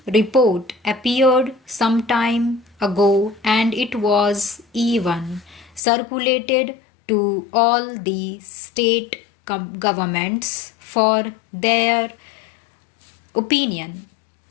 report appeared some time ago and it was even circulated to all the state governments for their opinion.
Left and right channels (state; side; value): drops out; right; at 5.8 s